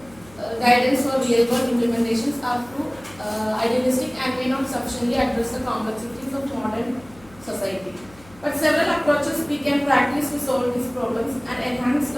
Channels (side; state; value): left; noise; hum, 24 dB below the sound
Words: guidance for real-world implementations, are too idealistic and may not sufficiently address the complexity